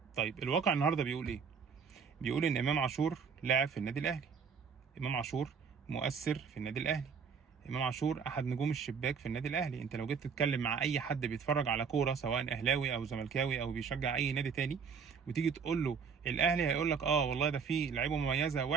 طيب الواقع النهارده بيقول ايه؟ بيقول ان امام عاشور لاعب في النادي الاهلي، امام عاشور مؤثر في النادي الاهلي، امام عاشور احد نجوم الشباك في النادي الاهلي. انت لو جيت تتكلم مع اي حد بيتفرج على كوره سواء اهلاوي او زملكاوي او بيشجع اي نادي تاني، وتيجي تقول له الاهلي، هيقول لك اه والله ده فيه لعيبه مميزه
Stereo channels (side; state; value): left; quieter; 6.1 dB